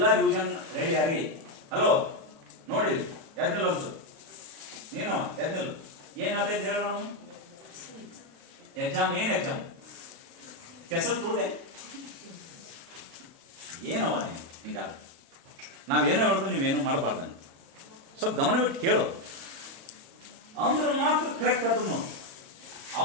ರಿವಿಷನ್ ರೆಡಿ ಆರಿ. ಹಲೋ ನೋಡಿ, ಎದ್ನಿಲ್ಲ ಅನ್ಸು ನೀನು, ಎದ್ನಿಲ್ಲ. ಏನ್ ಹೇಳ್ತಾ ಹೇಳೋಣ? ಎಕ್ಸಾಮ್ ಏನ್ ಎಕ್ಸಾಮ್? ಕೆಸರು ತುಳಿದೆ ಏನವ ನೀವು? ಹಿಂಗಾದ ನಾವೇನೋ ಹೇಳೋದು, ನೀವೇನು ಮಾಡಬಾರ್ದಂಗೆ. ಸ್ವಲ್ಪ ಗಮನ ಬಿಟ್ಟು ಕೇಳೋ ಅಂದ್ರೆ ಮಾತ್ರ ಕರೆಕ್ಟ್ ಆಗ್ತದೆ ನೋಡಿ.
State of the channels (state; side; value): late; left; 36 ms